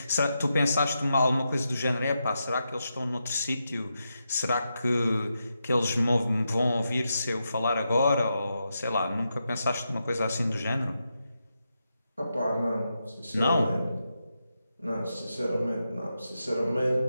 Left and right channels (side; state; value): both; inverted; correlation -0.86